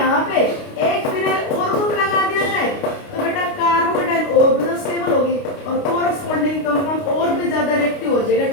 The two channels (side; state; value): right; late; 29 ms